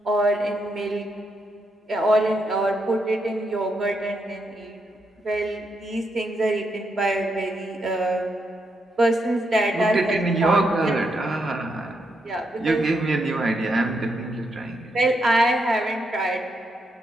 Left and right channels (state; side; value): normal; both; correlation 0.80